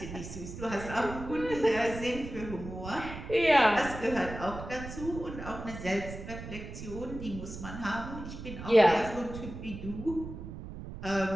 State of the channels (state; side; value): noise; right; rumble, 10 dB below the sound